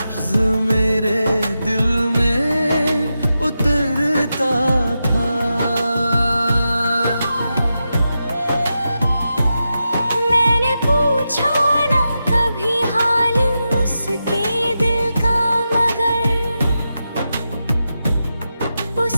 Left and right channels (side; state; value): both; inverted; correlation -0.89